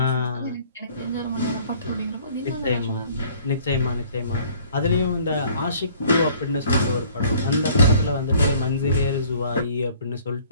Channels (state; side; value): inverted; both; correlation -0.55